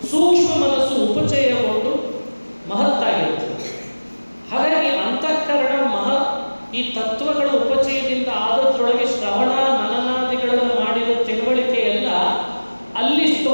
ಸೂಕ್ಷ್ಮ ಮನಸ್ಸು ಉಪಚಯಗೊಂಡು ಮಹತ್ತಾಗಿರುತ್ತದೆ. ಹಾಗಾಗಿ ಅಂತಃಕರಣ ಈ ತತ್ವಗಳ ಉಪಚಯದಿಂದ ಆದದ್ರೊಳಗೆ ಶ್ರವಣ ಮನನಾದಿಗಳನ್ನು ಮಾಡಿದ ತಿಳುವಳಿಕೆ ಎಲ್ಲ ಅಲ್ಲಿ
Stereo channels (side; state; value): both; inverted; correlation -1.00